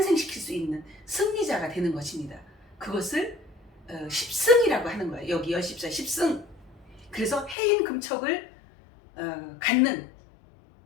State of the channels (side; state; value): right; drops out; at 7.6 s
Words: 수 있는 승리자가 되는 것입니다. 그것을 10승이라고 하는 거예요. 여기 열십사 10승. 그래서 해인 금척을 갖는